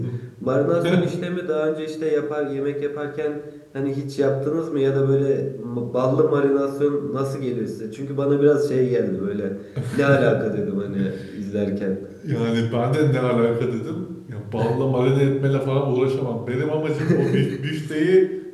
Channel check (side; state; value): both; identical; correlation 1.00